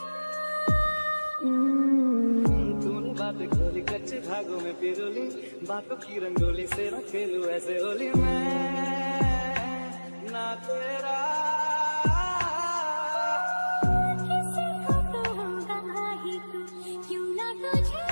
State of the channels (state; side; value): inverted; both; correlation -1.00